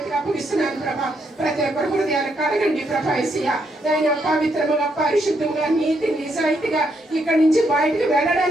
అప్పగిస్తున్నాను ప్రభా. ప్రతి ఒక్కరి హృదయాలు కడగండి ప్రభా యేసయ్యా. నైనా పవిత్రముగా పరిశుద్ధముగా నీతి నిజాయితీగా ఇక్కడి నుంచి బయటకు వెళ్ళడానికి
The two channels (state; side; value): normal; both; correlation 0.76